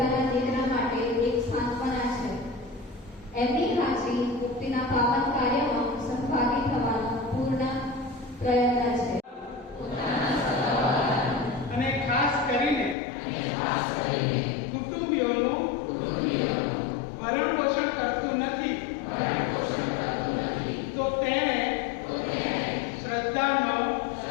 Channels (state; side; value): drops out; right; at 13.0 s